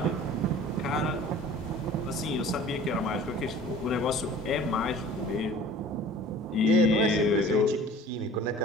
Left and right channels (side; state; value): both; normal; correlation 0.46